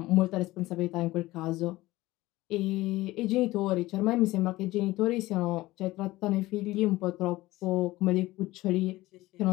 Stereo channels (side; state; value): right; quieter; 18.2 dB